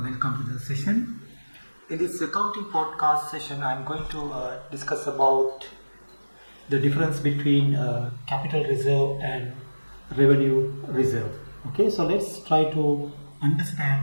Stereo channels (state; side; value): inverted; both; correlation -1.00